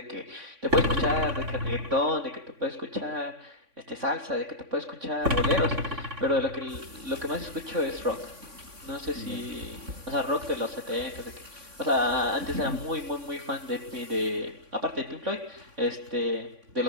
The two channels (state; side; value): late; left; 3.6 ms